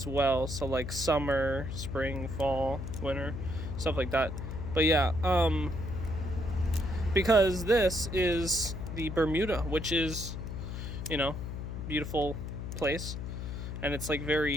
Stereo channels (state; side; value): noise; left; hum, 6 dB below the sound